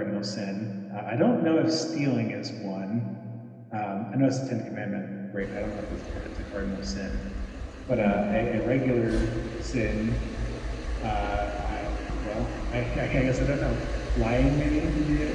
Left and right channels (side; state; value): both; identical; correlation 1.00